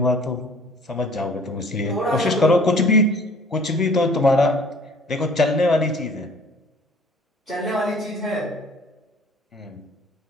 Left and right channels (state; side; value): normal; both; correlation 0.52